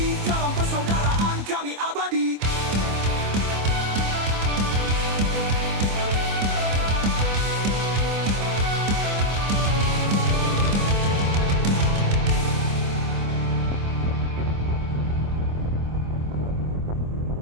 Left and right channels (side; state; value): left; late; 25 ms